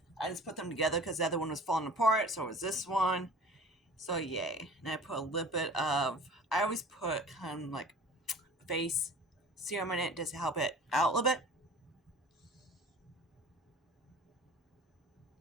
I just put them together because the other one was falling apart, so it was this one. So yay. And I put a little bit of, I always put kind of like face serum in it just to help it out a little bit.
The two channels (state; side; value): normal; both; correlation 0.43